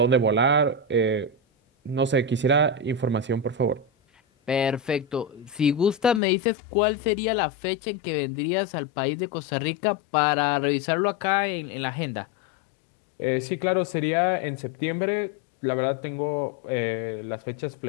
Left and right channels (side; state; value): right; drops out; at 6.2 s